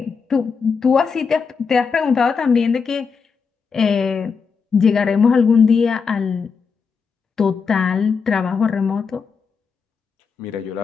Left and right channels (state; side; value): quieter; right; 5.6 dB